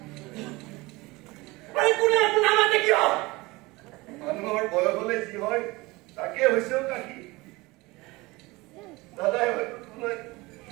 মানুহৰ বয়স হলে যি হয় তাকে হৈছেও কাকি দাদাই হয়তো তোমাক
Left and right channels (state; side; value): quieter; left; 22.3 dB